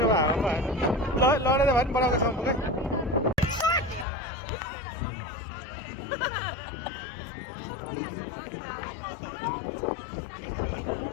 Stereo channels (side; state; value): right; drops out; at 4.0 s